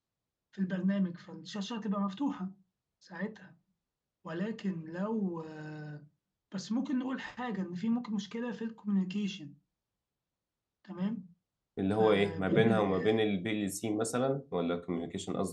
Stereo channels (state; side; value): identical; both; correlation 1.00